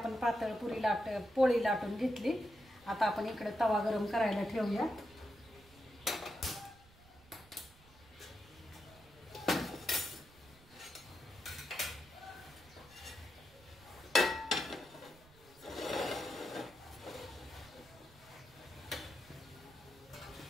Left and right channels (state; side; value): noise; right; rumble, 25 dB below the sound